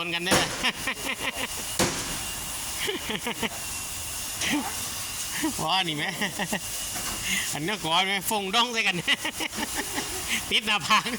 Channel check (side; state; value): both; identical; correlation 1.00